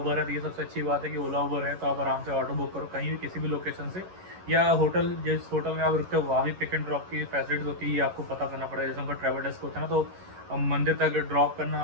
है, तो ये सबसे अच्छी बात है कि ओला उबर है, तो आप आराम से ऑटो बुक करो कहीं भी किसी भी लोकेशन से, या होटल जिस होटल में आप रुकते हो वहाँ भी पिक एंड ड्रॉप की फैसिलिटीज होती है। आपको पता करना पड़ेगा, जैसे उनका ट्रैवल डेस्क होता है ना, तो मंदिर तक ड्रॉप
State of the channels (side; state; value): left; late; 11 ms